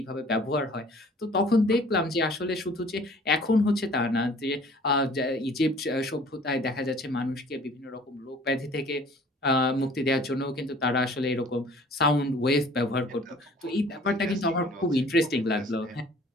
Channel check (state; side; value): normal; both; correlation 0.52